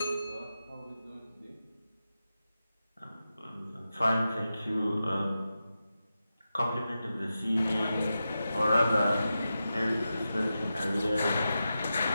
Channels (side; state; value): both; inverted; correlation -0.91